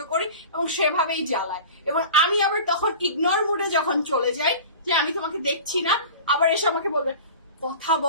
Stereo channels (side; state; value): both; inverted; correlation -0.37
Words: করি এবং সেভাবেই জ্বালায়। এবং আমি আবার তখন ইগনোর মুডে যখন চলে যাই যে আমি তোমাকে দেখছি না, আবার এসে আমাকে বলবে কথা